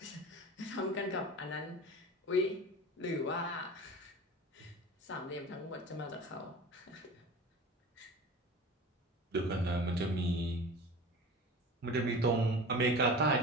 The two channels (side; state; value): both; normal; correlation 0.35